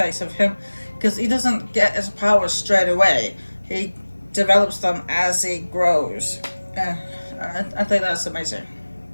of him, because he doesn't get his powers straight away. He develops them as he grows. Uh, I think that's amazing.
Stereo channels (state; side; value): inverted; both; correlation -1.00